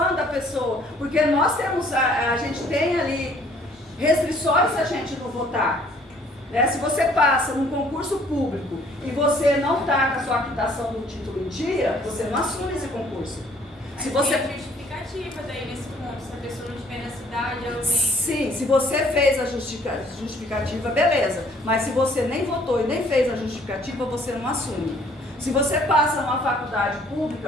a pessoa. Porque nós temos, a gente tem ali restrições se a gente não votar. Né? Se você passa num concurso público e você não está com a sua quitação do título em dia, você não assume esse concurso. Se você... Tem justificativa daí nesse ponto, se a pessoa não estiver na cidade, ela tem... Sim, se você fez a justificativa, beleza. Mas se você nem votou e nem fez a justificativa, você não assume. Se você passa numa faculdade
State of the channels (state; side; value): normal; both; correlation 0.59